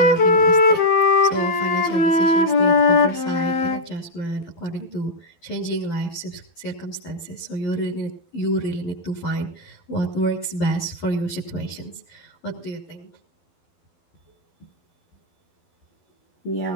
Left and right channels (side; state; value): right; late; 12 ms